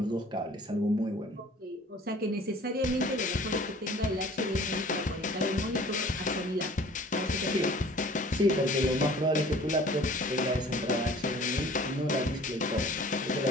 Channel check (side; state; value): both; normal; correlation 0.49